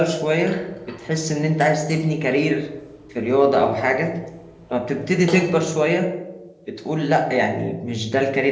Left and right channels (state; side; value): identical; both; correlation 1.00